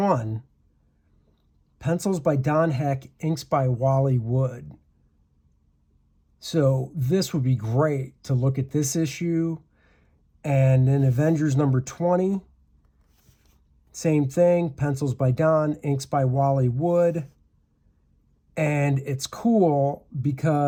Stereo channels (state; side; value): identical; both; correlation 1.00